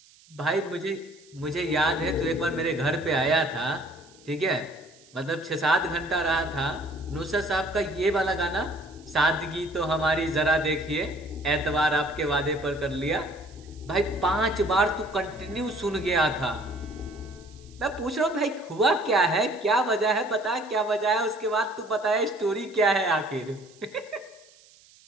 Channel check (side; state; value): right; noise; hiss, 27 dB below the sound